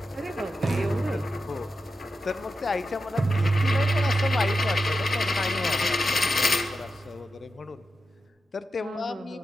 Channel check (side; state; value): both; normal; correlation 0.89